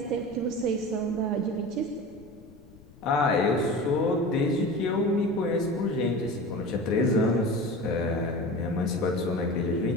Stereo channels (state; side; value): noise; left; rumble, 23 dB below the sound